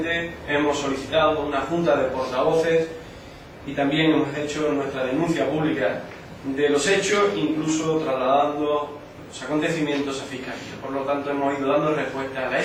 hemos solicitado una junta de portavoces y también hemos hecho nuestra denuncia pública de los hechos, incluso trasladando los acontecimientos a Fiscalía. Por lo tanto, hemos ido dando respuesta a la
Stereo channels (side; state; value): both; identical; correlation 1.00